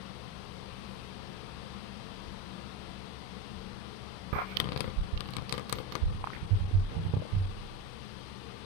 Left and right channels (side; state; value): left; late; 31 ms